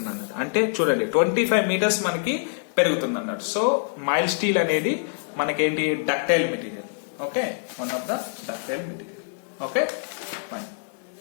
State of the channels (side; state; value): right; silent; digital silence